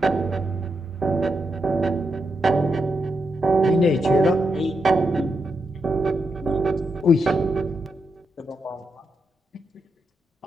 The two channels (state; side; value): normal; both; correlation 0.84